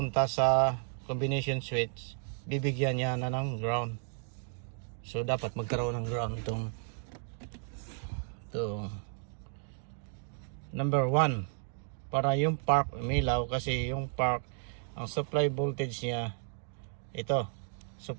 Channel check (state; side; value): silent; left; 56 dB below the other